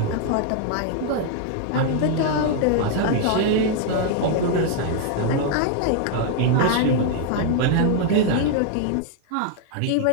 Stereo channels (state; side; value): different; both; correlation 0.00